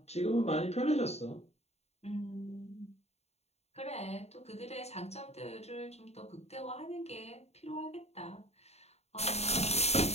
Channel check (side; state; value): right; late; 0.31 ms